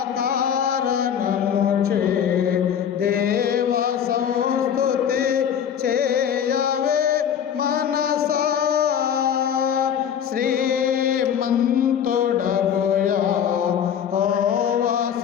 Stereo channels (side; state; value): right; quieter; 8.6 dB